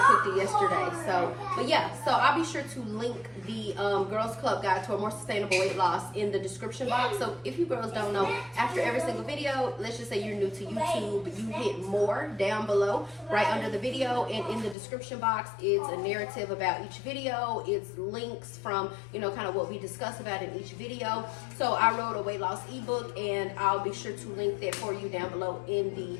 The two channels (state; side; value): drops out; right; at 14.8 s